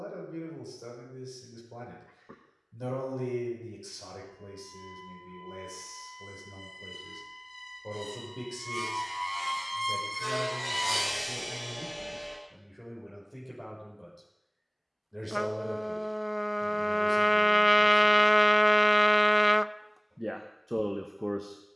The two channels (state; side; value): identical; both; correlation 1.00